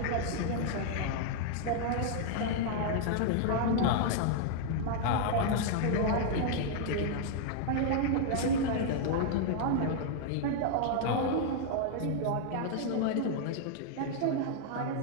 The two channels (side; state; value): both; different; correlation 0.00